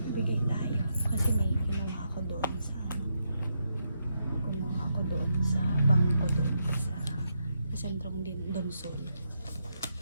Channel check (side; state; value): both; inverted; correlation -0.81